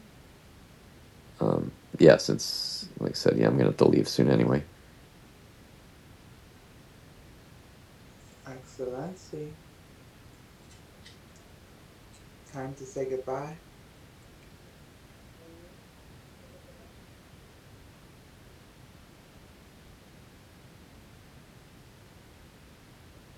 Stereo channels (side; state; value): both; identical; correlation 1.00